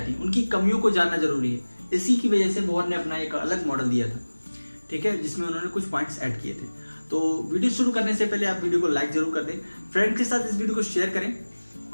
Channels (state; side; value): inverted; both; correlation -1.00